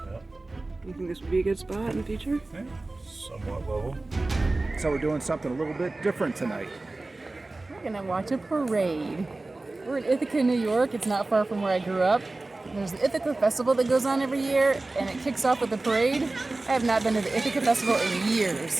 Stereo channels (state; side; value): quieter; left; 3.1 dB